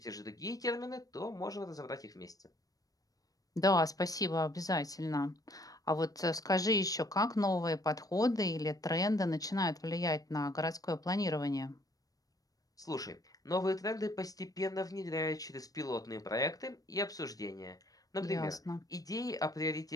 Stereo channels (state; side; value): late; right; 0.18 ms